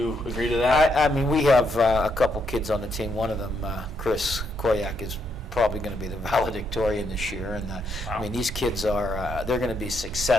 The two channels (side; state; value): both; normal; correlation 0.76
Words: agree to that? We have a couple kids on the team. One of them, Chris Koyak, is probably going to be the valedictorian this year, and wow. These kids are they're going to be